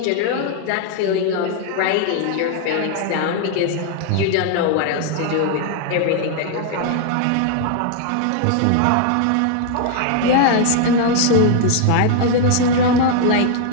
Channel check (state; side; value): different; both; correlation 0.00